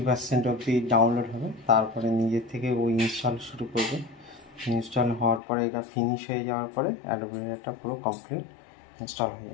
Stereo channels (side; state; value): right; drops out; at 5.4 s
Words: অবধি ডাউনলোড হবে, তারপরে নিজের থেকে ওই ইনস্টল শুরু করবে। ইনস্টল হওয়ার পরে এটা ফিনিশ হয়ে যাওয়ার পরে অ্যাডোব রিডারটা পুরো কমপ্লিট ইনস্টল হয়ে